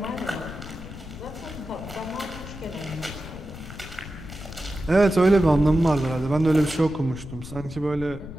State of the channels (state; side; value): noise; left; rumble, 13 dB below the sound